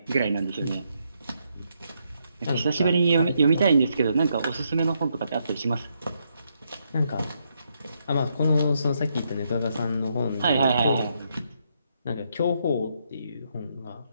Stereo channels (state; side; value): inverted; both; correlation -0.78